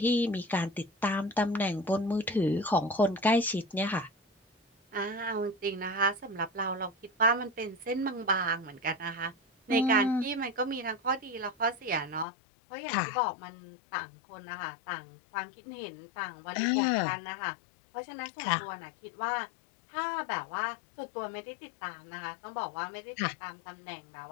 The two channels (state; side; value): drops out; right; at 12.2 s